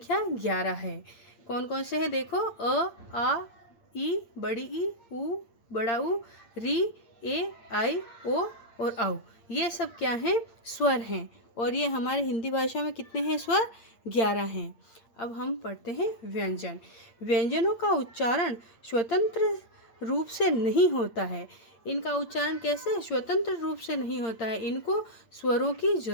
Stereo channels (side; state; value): right; late; 8.6 ms